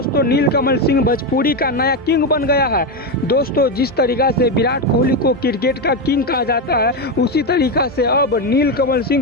नीलकमल सिंह भोजपुरी का नया किंग बन गया है। दोस्तों जिस तरीका से विराट कोहली को क्रिकेट का किंग कहा जाता है, उसी तरीका से अब नीलकमल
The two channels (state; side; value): normal; both; correlation 0.10